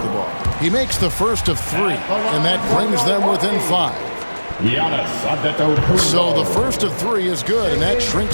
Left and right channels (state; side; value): inverted; both; correlation -1.00